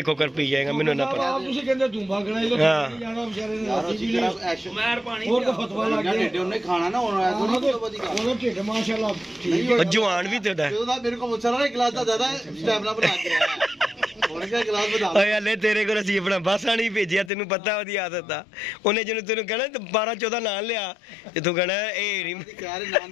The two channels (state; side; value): drops out; right; at 17.3 s